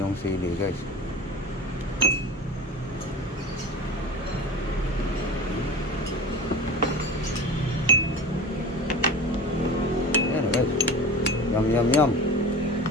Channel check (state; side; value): normal; both; correlation 0.33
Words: sili guys. Ayan na guys. Yum yum yum.